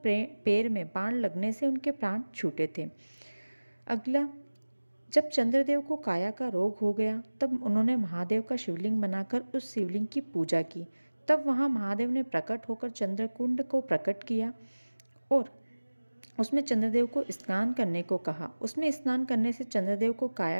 पैर में बाण लगने से उनके प्राण छूटे थे। अगला, जब चंद्रदेव को काया का रोग हो गया तब उन्होंने महादेव का शिवलिंग बनाकर उस शिवलिंग की पूजा की। तब वहाँ महादेव ने प्रकट होकर चंद्रकुंड को प्रकट किया और उसमें चंद्रदेव को स्नान करने को कहा। उसमें स्नान करने से चंद्रदेव को काया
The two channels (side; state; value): both; inverted; correlation -1.00